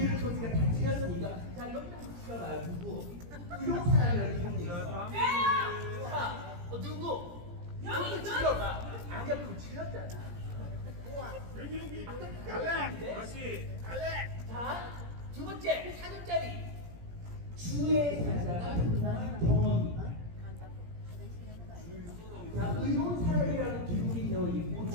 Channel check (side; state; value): left; late; 17 ms